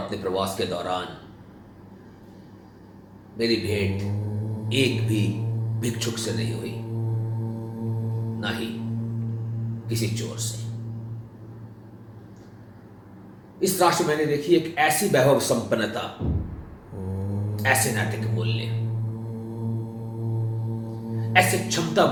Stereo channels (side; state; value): both; identical; correlation 1.00